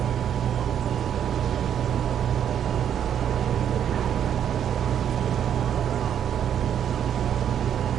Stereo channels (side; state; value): left; quieter; 9.2 dB